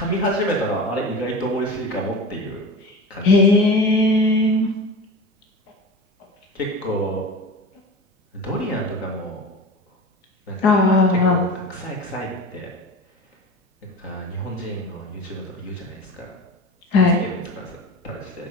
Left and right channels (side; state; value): both; normal; correlation 0.32